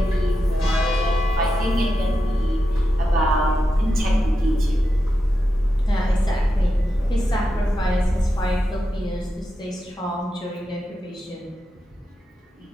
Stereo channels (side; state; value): both; normal; correlation 0.88